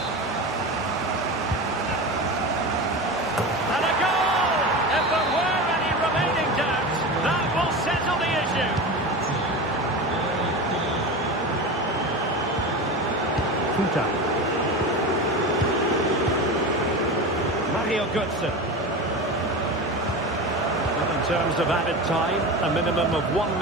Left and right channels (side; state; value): both; normal; correlation 0.26